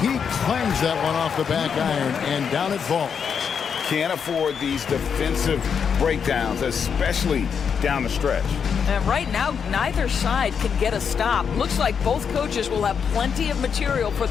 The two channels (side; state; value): right; quieter; 6.9 dB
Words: He clangs that one off the back iron, and down it falls. Can't afford these defensive breakdowns, especially down the stretch. And right now, neither side can get a stop. Looks like both coaches will have plenty of material for